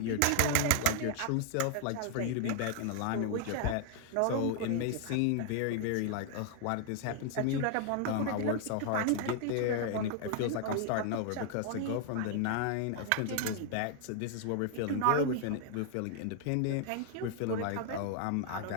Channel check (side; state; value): both; different; correlation 0.00